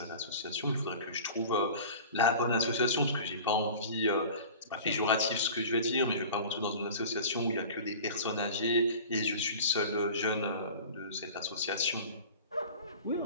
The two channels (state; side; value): inverted; both; correlation -0.39